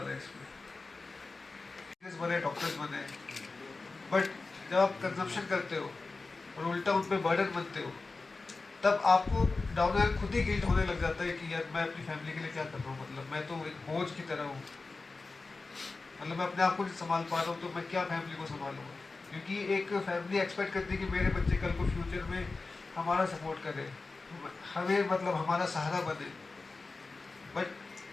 है इसमें। बने डॉक्टर्स बने, बट जब आप कंजप्शन करते हो और उल्टा उन पर बर्डन बनते हो, तब आपको डाउन एंड खुद ही गिल्ट होने लग जाता है कि यार मैं अपनी फैमिली के लिए क्या कर रहा हूँ, मतलब मैं तो एक बोझ की तरह हूँ, मतलब मैं अपने आप को नहीं संभाल पा रहा हूँ तो मैं क्या फैमिली को संभालूंगा। क्योंकि एक फैमिली एक्सपेक्ट करती है कि मेरे बच्चे कल को फ्यूचर में हमारा सपोर्ट करें, हमें मतलब हमारा सहारा बने, बट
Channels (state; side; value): quieter; right; 3.7 dB